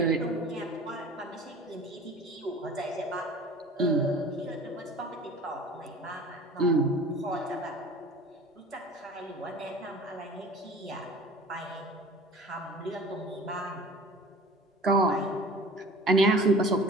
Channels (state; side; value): normal; both; correlation 0.43